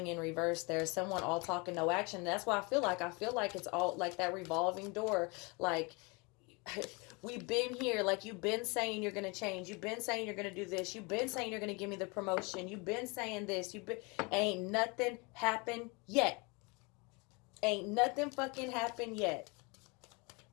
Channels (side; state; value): right; quieter; 28.8 dB